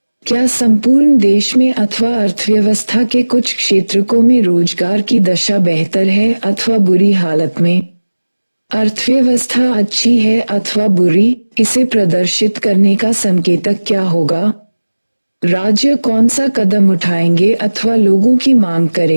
क्या संपूर्ण देश में अथवा अर्थव्यवस्था के कुछ क्षेत्रों में रोजगार की दशा बेहतर है अथवा बुरी हालत में? अर्थव्यवस्था अच्छी है अथवा बुरी, इसे प्रदर्शित करने का संकेतक क्या होगा? राज्य कौन सा कदम उठाएंगे अथवा लोगों की मांग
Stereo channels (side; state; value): both; inverted; correlation -1.00